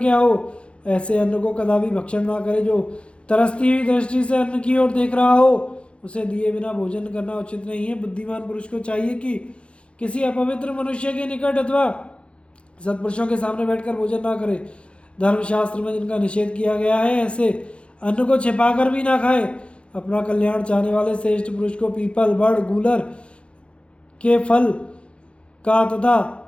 हो, ऐसे अन्न को कदापि भक्षण ना करे। जो तरसती हुई दृष्टि से अन्न की ओर देख रहा हो, उसे दिए बिना भोजन करना उचित नहीं है। बुद्धिमान पुरुष को चाहिए कि किसी अपवित्र मनुष्य के निकट अथवा सत्पुरुषों के सामने बैठकर भोजन ना करे। धर्मशास्त्र में जिनका निषेध किया गया है, ऐसे अन्न को छिपाकर भी ना खाए। अपना कल्याण चाहने वाले श्रेष्ठ पुरुष को पीपल, बड़, गूलर के फल का तथा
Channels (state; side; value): late; right; 0.059 ms